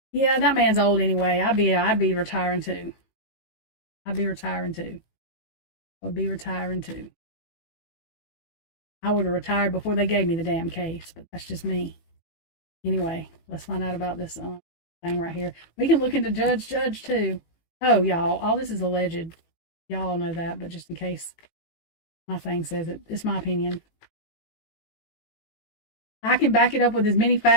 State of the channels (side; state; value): right; late; 18 ms